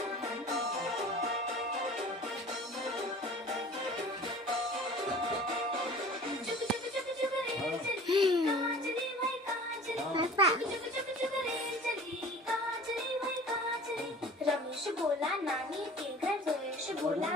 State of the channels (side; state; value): both; normal; correlation 0.44